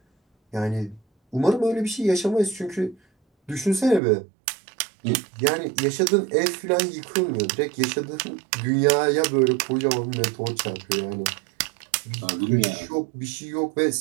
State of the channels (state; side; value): drops out; left; at 4.0 s